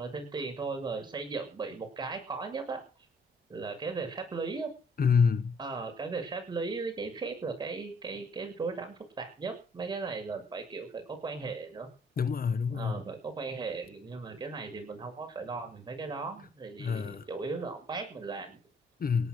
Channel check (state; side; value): normal; both; correlation 0.64